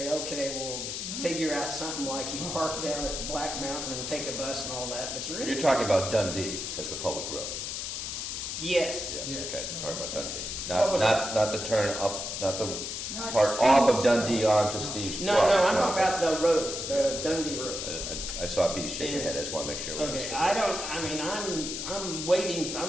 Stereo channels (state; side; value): noise; left; hiss, 4 dB below the sound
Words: okay, we'll figure out something like you park down at Black Mountain and take a bus and all that, but You're talking about Dundee as the public road. Yes. Yes, okay, you're talking about Dundee. What was Not the turn up, not the Not part off of Dundee onto Steve's. No, I'm talking about the roads, the Dundee Road. I saw B shake your head, I just want to make sure. Okay, I'm waiting,